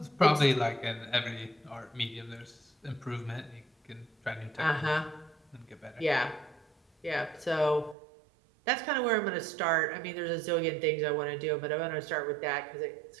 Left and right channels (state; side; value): drops out; left; at 8.0 s